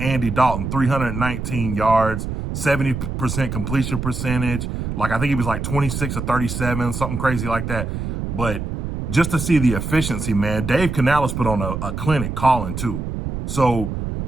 Dalton, 319 yards, 70% completion percentage. Like, I think he was like 26 or 37, something crazy like that. But just to see the efficiency, man, Dave Canales put on a clinic calling too. So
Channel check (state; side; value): noise; right; rumble, 4 dB below the sound